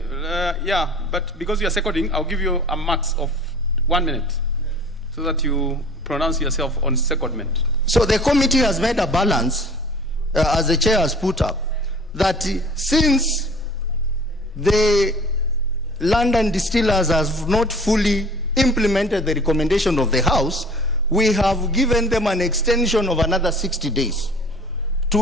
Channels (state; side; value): normal; both; correlation 0.46